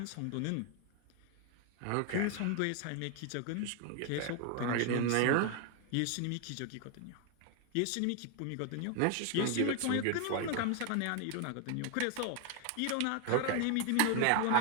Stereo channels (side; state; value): both; different; correlation 0.00